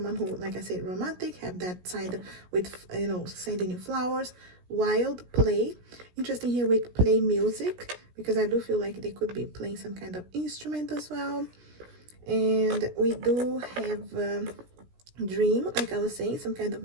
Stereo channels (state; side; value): late; left; 17 ms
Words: who, like I said, romantic, have that side with, you know, sending you flowers. Wild, play, interesting here with play music, because I do feel like they could be playing some kind of instrument as well. And we do have dream, like I was saying, some kind